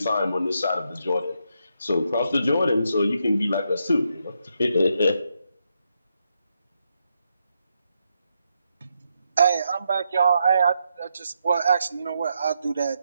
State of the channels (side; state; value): both; inverted; correlation -0.81